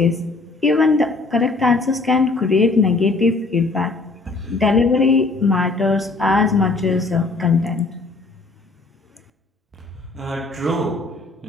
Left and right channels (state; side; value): quieter; right; 3.5 dB